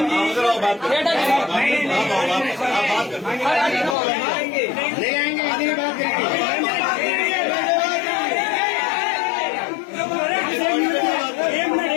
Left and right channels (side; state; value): right; drops out; at 4.0 s